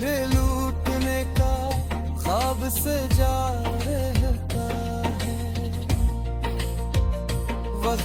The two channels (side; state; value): both; identical; correlation 1.00